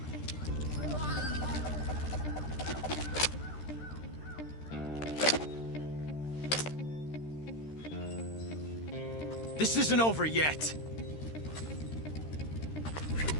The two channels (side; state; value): right; late; 13 ms